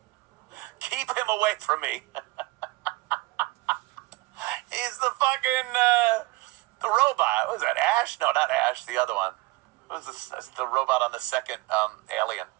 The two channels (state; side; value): quieter; left; 21.9 dB